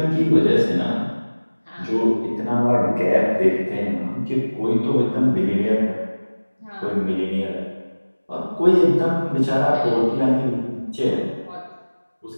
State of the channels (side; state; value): both; inverted; correlation -1.00